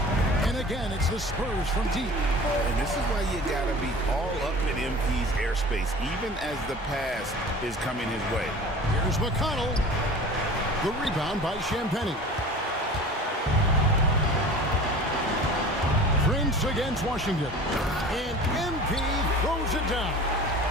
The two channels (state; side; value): normal; both; correlation 0.40